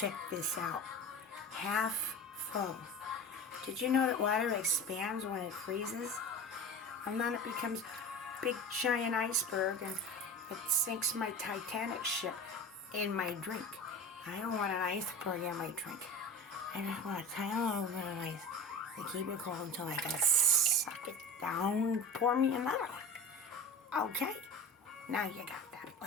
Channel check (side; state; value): both; normal; correlation 0.31